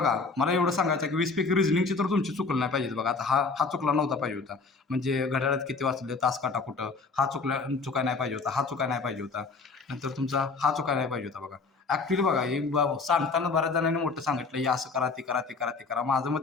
मला एवढं सांगायचं की 20 पैकी रिझनिंगचे तर तुमची चुकलं नाही पाहिजे बघा. आता हा चुकला नव्हता पाहिजे होता. म्हणजे घड्याळात किती वाचले, तास काटा कुठं, हा चुकाय नाही पाहिजे होता, हा चुकाय नाही पाहिजे होता. नंतर तुमचा हा चुकाय नाही पाहिजे होता बघा. ॲक्च्युली बघा, हे सांगताना बऱ्याच जणांनी मोठं सांगितलं, हे असं करा, ते करा, ते करा, ते करा. माझं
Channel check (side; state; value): right; quieter; 4.3 dB